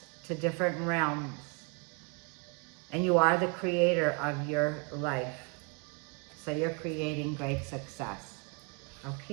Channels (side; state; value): left; quieter; 32.7 dB